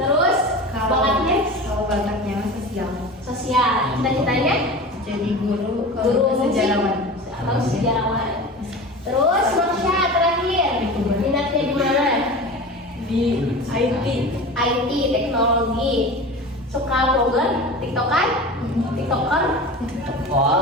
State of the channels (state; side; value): normal; both; correlation 0.32